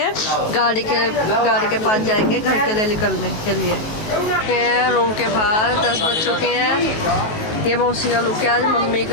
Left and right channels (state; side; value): late; right; 19 ms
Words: गाड़ी के पास जाएंगे घर के लिए निकलने के लिए। रूम के बाहर 10 बज चुके हैं। ये मौसी का लुक है आज, मम्मी